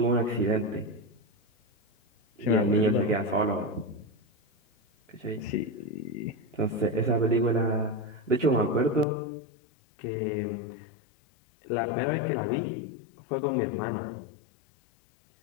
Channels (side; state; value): right; drops out; at 9.1 s